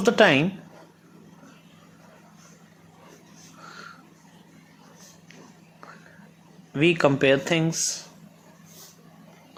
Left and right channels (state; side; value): identical; both; correlation 1.00